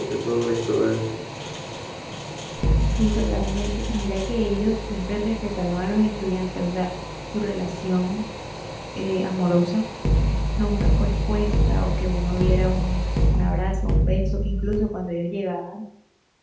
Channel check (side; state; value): both; identical; correlation 1.00